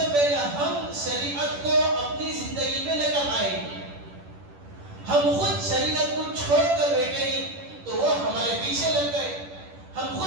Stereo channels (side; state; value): left; late; 10 ms